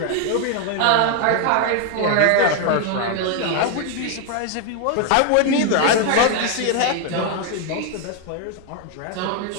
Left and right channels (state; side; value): different; both; correlation 0.01